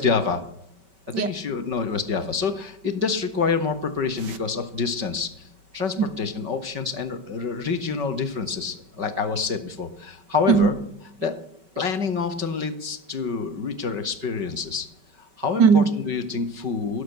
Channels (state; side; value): late; left; 5.2 ms